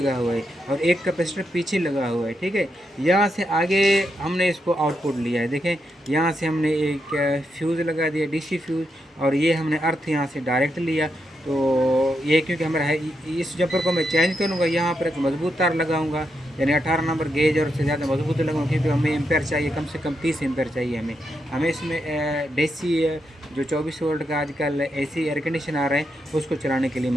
हुआ है, और एक कैपेसिटर पीछे लगा हुआ है, ठीक है। यहाँ से आगे हमने इसको आउटपुट लिया है, देखें यहाँ से हमने एक फ्यूज़ लगा दिया, DC फ्यूज़, और ये हमने अर्थ यहाँ से डायरेक्ट लिया। तो ये क्योंकि हमारा है, इस जंपर को मैं चेंज करूँगा, यहाँ पर एक मजबूत तार लगाऊंगा, यानी 18 नंबर गेज और उससे ज़्यादा मजबूत लगाऊंगा, क्योंकि हमें एम्पेयर चाहिए, कम से कम 30 एम्पेयर चाहिए हमें इसमें DC जो 24 वोल्ट का आजकल AC एयर कंडीशन आ रहा है उसको चलाने के लिए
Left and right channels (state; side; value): normal; both; correlation 0.83